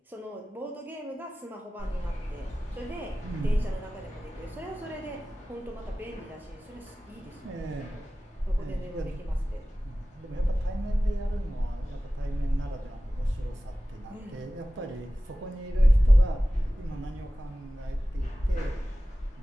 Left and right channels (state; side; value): normal; both; correlation 0.96